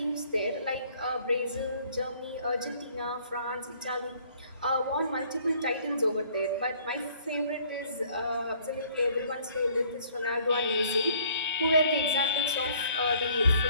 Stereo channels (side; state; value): both; inverted; correlation -0.59